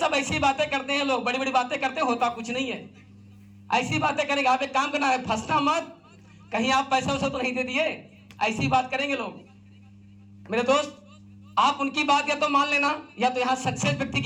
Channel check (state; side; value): identical; both; correlation 1.00